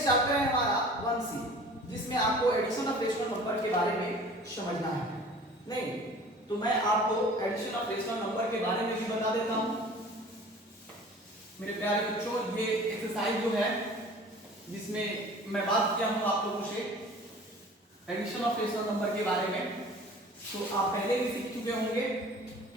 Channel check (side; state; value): both; normal; correlation 0.45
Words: चैप्टर है हमारा 1C, जिसमें आपको एडिशन ऑफ रेशनल नंबर के बारे में समझना है। नहीं तो मैं आपको एडिशन ऑफ रेशनल नंबर के बारे में भी बता देता हूं। मेरे प्यारे बच्चों, ये एक्सरसाइज जो है जिसमें मैं बात किया हूं आप लोगों से एडिशन ऑफ रेशनल नंबर के बारे में, तो आप पहले भी सीख चुके होंगे।